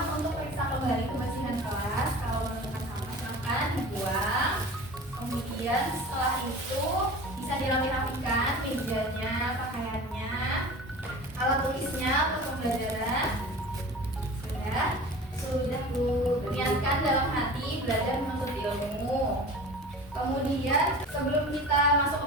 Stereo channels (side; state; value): both; normal; correlation 0.37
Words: untuk periksa kembali kebersihan kelas. Kalau menemukan sampah silakan dibuang. Kemudian setelah itu bisa dirapi-rapikan mejanya, pakaiannya, alat tulisnya untuk pembelajaran. Sudah Bu. Niatkan dalam hati belajar menuntut ilmu. Kemudian sebelum kita masuk